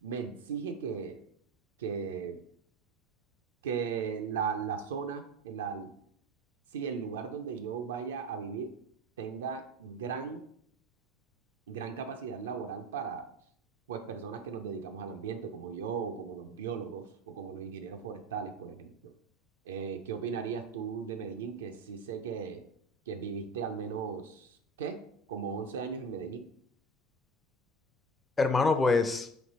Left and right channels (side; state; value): both; normal; correlation 0.31